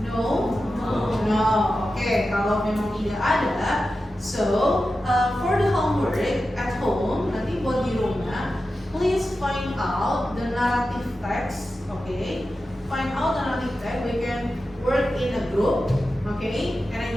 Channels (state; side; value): normal; both; correlation 0.92